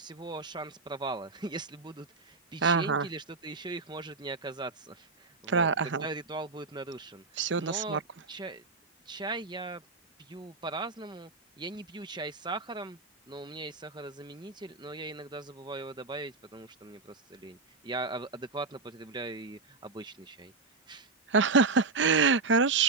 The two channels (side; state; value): left; quieter; 4.0 dB